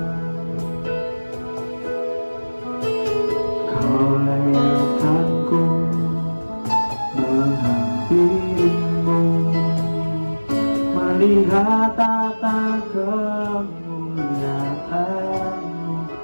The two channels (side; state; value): both; inverted; correlation -1.00